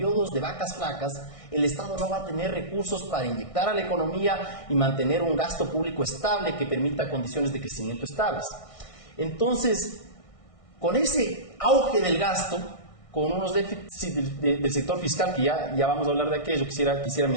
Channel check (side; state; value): right; late; 1.6 ms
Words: de vacas flacas, el Estado no va a tener recursos para inyectar a la economía y mantener un gasto público estable que permita condiciones de crecimiento estables. Entonces, con ese auge del gasto, con unos déficits del sector fiscal, que ya vamos a hablar de aquello, quisiera